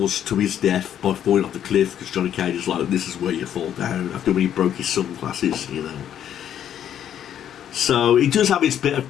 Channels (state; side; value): quieter; right; 10.0 dB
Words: to his death by falling off the cliff because Johnny Cage is like, this is where you fall down, after when he broke his sunglasses, you know. So it does have its bit of